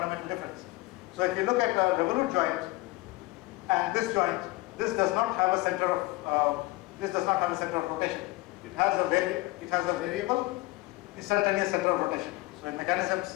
difference. So if you look at a revolute joint and this joint, this does not have a center of rotation. It has a variable instantaneous center of rotation. So in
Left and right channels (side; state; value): right; quieter; 21.2 dB